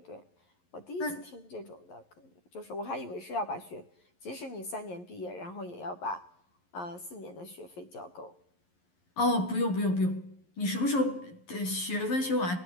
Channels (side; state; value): right; late; 11 ms